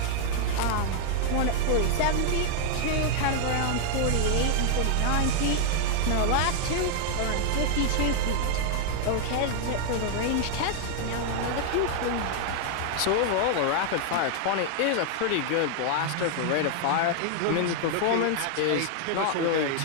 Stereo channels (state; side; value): different; both; correlation 0.00